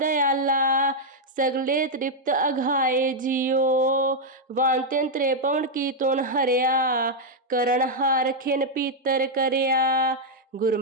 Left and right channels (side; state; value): both; normal; correlation -0.02